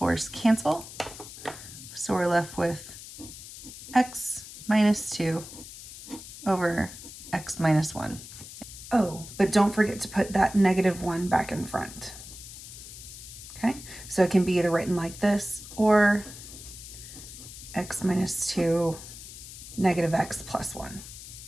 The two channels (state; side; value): noise; left; hiss, 14 dB below the sound